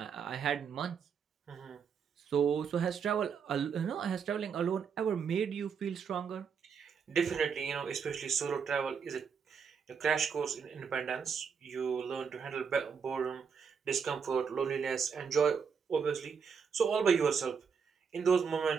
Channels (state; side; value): quieter; left; 6.4 dB